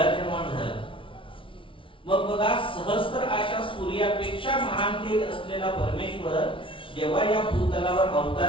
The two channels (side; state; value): right; late; 0.25 ms